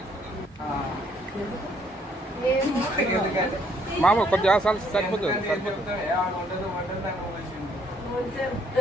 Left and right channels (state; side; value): normal; both; correlation 0.66